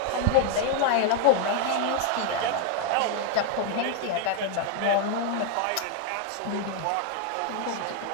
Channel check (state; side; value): different; both; correlation 0.00